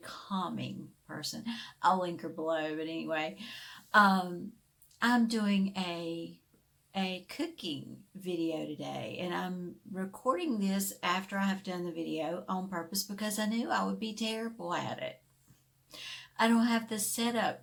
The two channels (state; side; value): identical; both; correlation 1.00